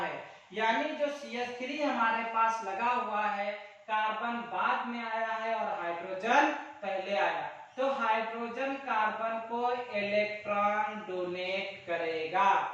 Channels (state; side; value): identical; both; correlation 1.00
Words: यानी जो CH3 हमारे पास लगा हुआ है, कार्बन बाद में आया है और हाइड्रोजन पहले आया, तो हाइड्रोजन कार्बन को इलेक्ट्रॉन डोनेट करेगा।